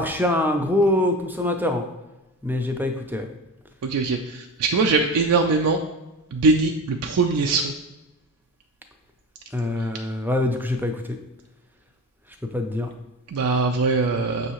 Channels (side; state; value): both; normal; correlation 0.28